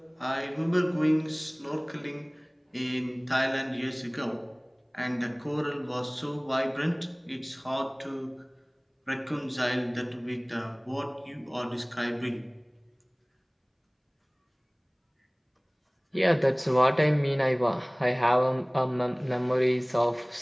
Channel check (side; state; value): both; identical; correlation 1.00